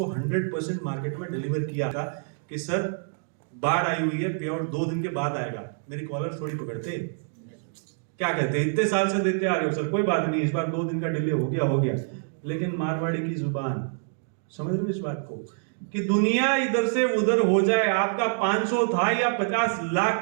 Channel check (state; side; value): silent; left; digital silence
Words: 100% मार्केट में डिलीवर किया था कि सर बाढ़ आई हुई है, पे आउट 2 दिन के बाद आएगा। मेरी कॉलर थोड़ी पकड़ते, क्या कहते, इतने साल से देते आ रहे हो सर, कोई बात नहीं, इस बार 2 दिन का डिले हो गया। लेकिन मारवाड़ी की जुबान, समझ रहे हो इस बात को, कि दुनिया इधर से उधर हो जाए, आपका 500 था या 50